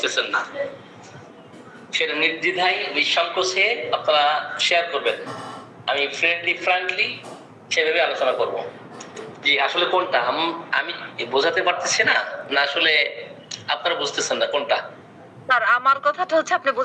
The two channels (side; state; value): both; identical; correlation 1.00